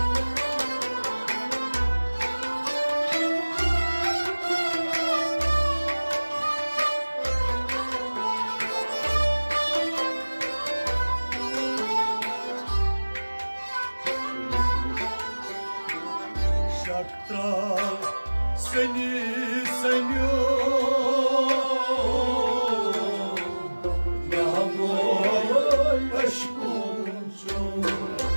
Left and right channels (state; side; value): inverted; both; correlation -1.00